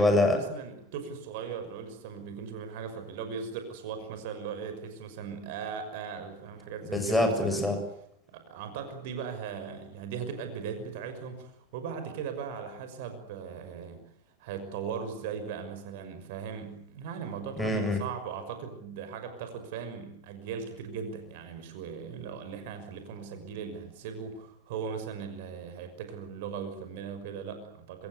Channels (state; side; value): normal; both; correlation 0.36